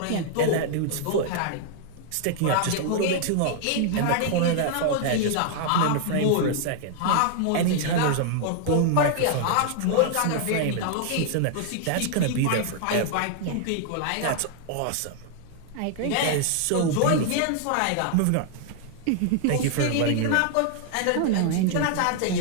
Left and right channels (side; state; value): both; different; correlation 0.00